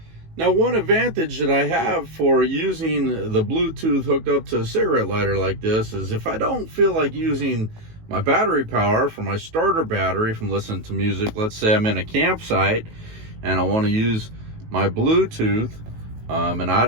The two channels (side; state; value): left; late; 18 ms